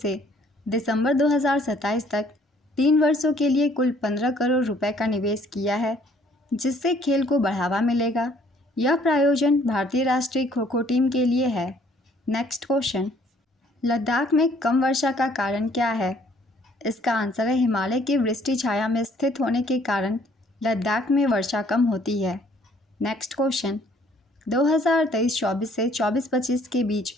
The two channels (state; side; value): normal; both; correlation 0.61